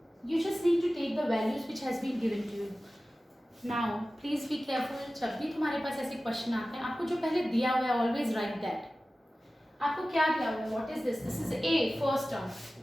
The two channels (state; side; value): normal; both; correlation 0.96